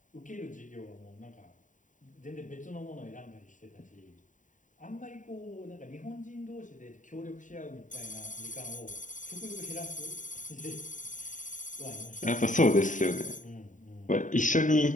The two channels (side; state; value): right; late; 0.37 ms